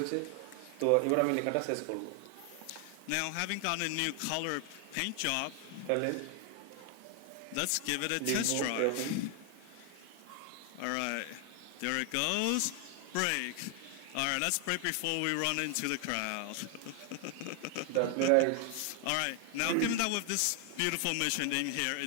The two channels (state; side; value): different; both; correlation 0.00